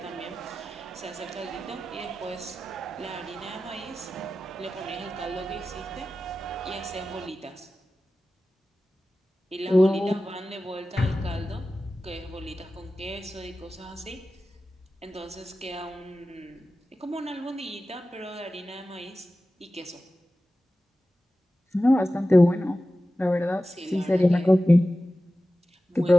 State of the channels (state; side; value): normal; both; correlation 0.95